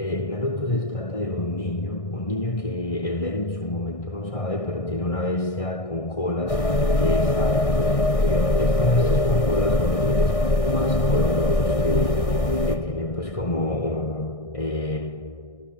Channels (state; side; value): late; right; 1.6 ms